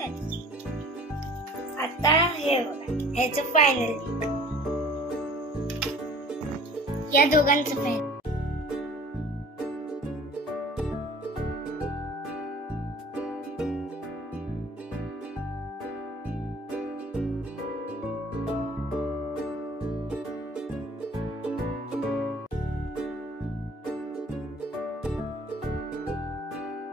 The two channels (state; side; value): normal; both; correlation 0.49